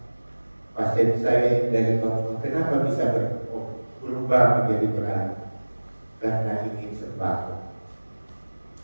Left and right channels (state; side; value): inverted; both; correlation -1.00